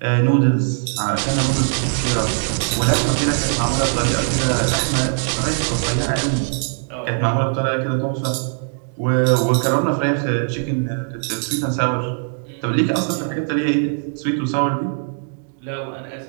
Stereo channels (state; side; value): silent; left; 60 dB below the other